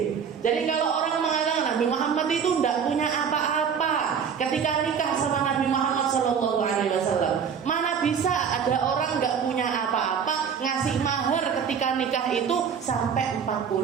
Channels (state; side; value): quieter; left; 7.1 dB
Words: Jadi kalau orang mengatakan Nabi Muhammad itu tidak punya apa-apa ketika nikah sama Nabi Muhammad Sallallahu Alaihi Wasallam, mana bisa ada orang nggak punya apa-apa ngasih mahar ketika nikah itu sampai